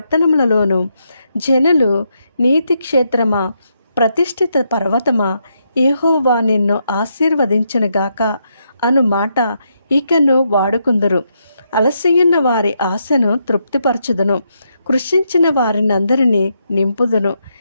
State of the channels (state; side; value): inverted; both; correlation -0.79